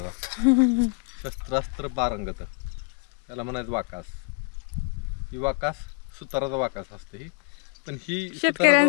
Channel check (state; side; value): quieter; right; 34.8 dB